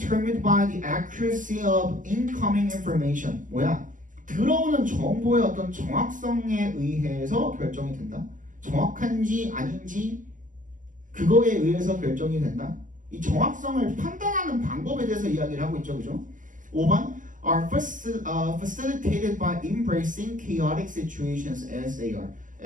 by the accuracy of incoming information. 뭐야? 들어오는 정보의 어떤 정확성에 의해서 결정이 된다. 정확한지 아닌지 그거에 의해서 결정이 된다. 이 정확성을 판단하는 방법에 대해서 이야기를 하고 있죠, 그죠? 5번 are facilitated by embracing chaotic situations as they are.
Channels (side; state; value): left; late; 0.38 ms